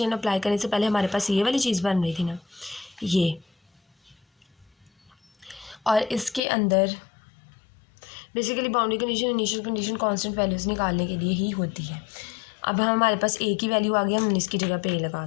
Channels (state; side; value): drops out; right; at 6.4 s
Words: अप्लाई करने से पहले हमारे पास ये वाली चीज़ बन रही थी ना, ये, और इसके अंदर basically boundary condition initial condition constant values निकालने के लिए ही होती है। अब हमारे पास a की वैल्यू आ गई, हमने इसकी जगह पे a लगा